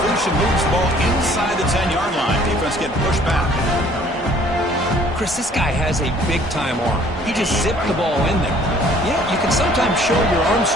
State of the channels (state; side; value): normal; both; correlation 0.56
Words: moves the ball inside the 10-yard line. Defense getting pushed back. Chris, this guy has a big-time arm. He just zipped the ball in there. Yeah, you can sometimes show your arm